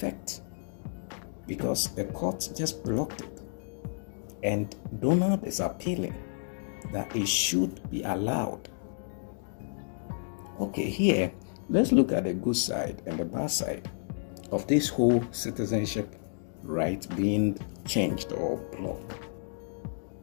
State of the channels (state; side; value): silent; right; digital silence